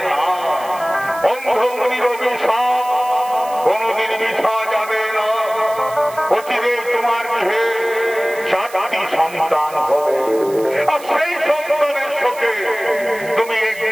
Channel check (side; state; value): right; noise; hiss, 18 dB below the sound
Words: না। অন্ধমুনির অভিশাপ কোনদিন মিথ্যা যাবে না। অচিরে তোমার গৃহে 4টি সন্তান হবে, আর সেই সন্তানের শোকে তুমি